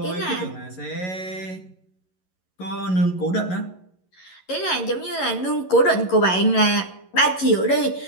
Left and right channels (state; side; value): late; right; 11 ms